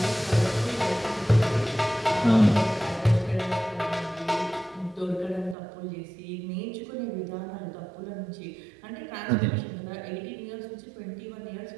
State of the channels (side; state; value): left; drops out; at 5.6 s